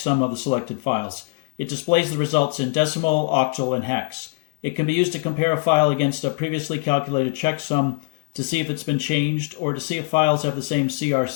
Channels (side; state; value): right; silent; digital silence